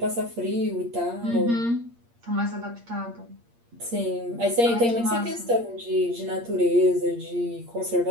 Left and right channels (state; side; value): late; left; 8.6 ms